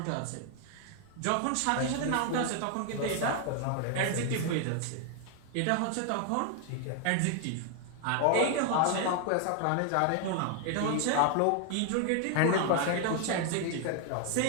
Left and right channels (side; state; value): both; different; correlation 0.00